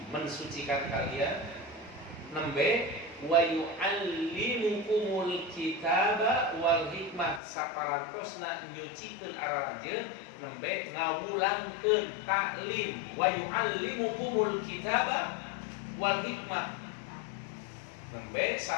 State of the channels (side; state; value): right; drops out; at 7.4 s